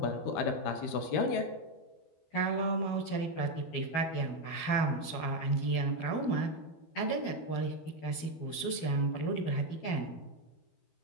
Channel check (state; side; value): late; right; 12 ms